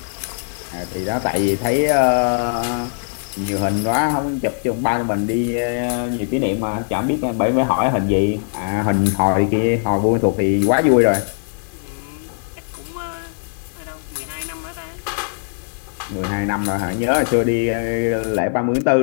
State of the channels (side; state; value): right; silent; digital silence